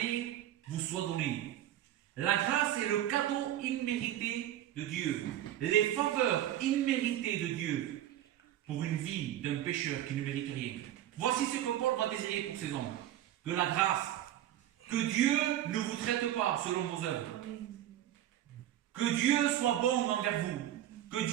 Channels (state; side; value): quieter; left; 12.4 dB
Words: vous soient données. La grâce est le cadeau immérité de Dieu, les faveurs imméritées de Dieu pour une vie d'un pécheur qui ne mérite rien. Voici ce que Paul va désirer pour ces hommes. Que la grâce, que Dieu ne vous traite pas selon vos œuvres, que Dieu soit bon envers vous, que